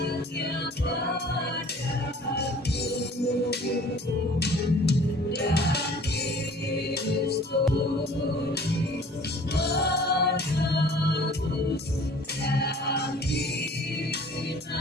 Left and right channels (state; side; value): normal; both; correlation 0.49